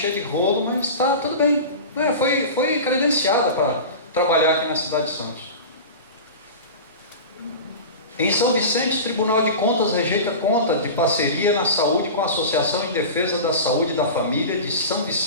de rolo, mas está tudo bem. Foi credenciada para trabalhar aqui na cidade de Santos. Em São Vicente, Tribunal de Contas rejeita conta de parceria na saúde com a Associação em Defesa da Saúde e da Família de São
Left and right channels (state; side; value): inverted; both; correlation -0.30